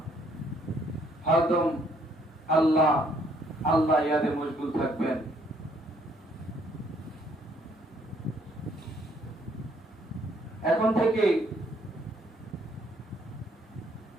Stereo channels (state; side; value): normal; both; correlation 0.66